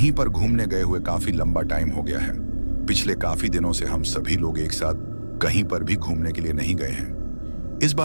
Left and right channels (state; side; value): inverted; both; correlation -1.00